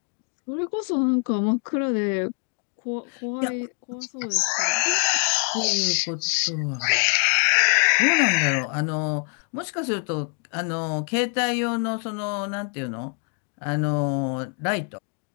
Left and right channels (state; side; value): quieter; right; 38.6 dB